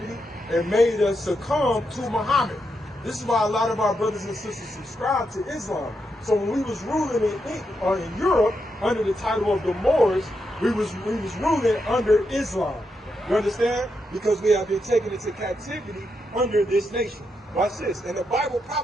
and made us succumb to Muhammad. This is why a lot of our brothers and sisters subscribe to Islam. So when we was ruling in Europe under the title of the Moors, we was ruling under Islam. You understand? Because we have been taken into captivity under this nation. Watch this. And the Bible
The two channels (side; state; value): both; normal; correlation 0.83